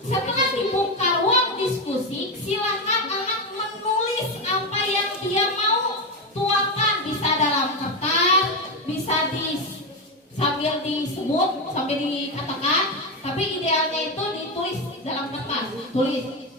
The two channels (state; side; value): normal; both; correlation 0.12